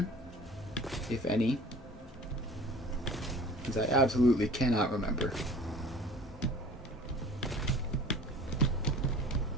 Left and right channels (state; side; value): normal; both; correlation 0.44